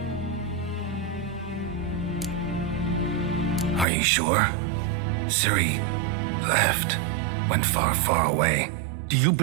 Are you sure? Ciri left. Went far, far away. Do you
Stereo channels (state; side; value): drops out; left; at 3.9 s